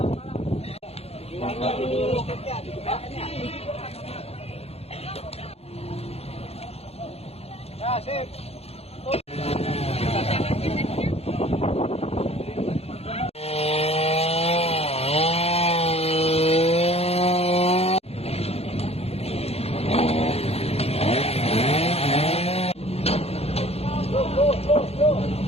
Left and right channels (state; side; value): late; right; 0.29 ms